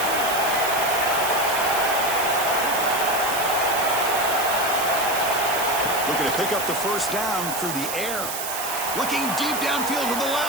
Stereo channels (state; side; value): noise; right; hiss, 5 dB below the sound